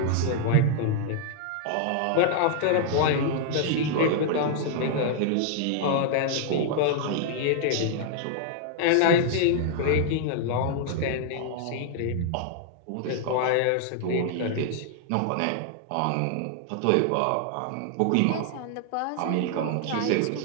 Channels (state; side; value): different; both; correlation -0.01